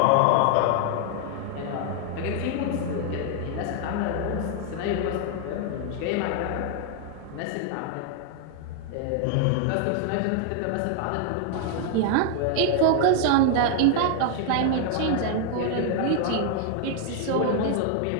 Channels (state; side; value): different; both; correlation 0.00